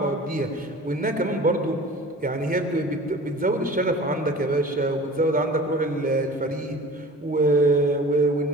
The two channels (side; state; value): both; normal; correlation 0.41